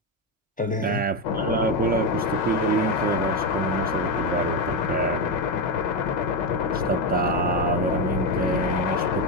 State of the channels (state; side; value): normal; both; correlation 0.10